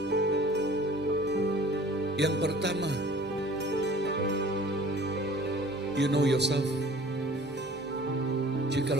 yang pertama, you know yourself.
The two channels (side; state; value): both; normal; correlation 0.48